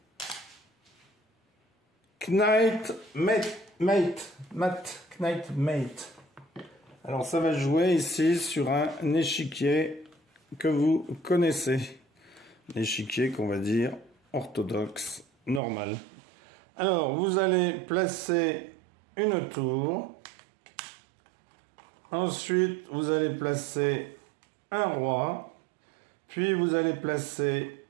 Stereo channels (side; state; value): left; drops out; at 15.6 s